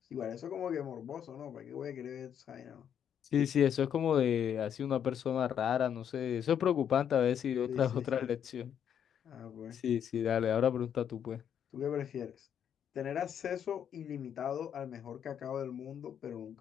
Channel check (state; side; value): quieter; right; 8.8 dB